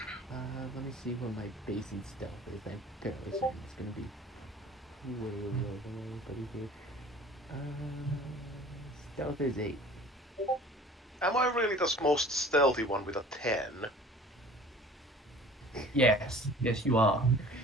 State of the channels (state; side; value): normal; both; correlation 0.47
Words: me see what my basic stealth is. I'm fairly certain it's gonna be way below everybody here. Stealth is 8. Am I really the most stealthy one with a 10? Yes, you are.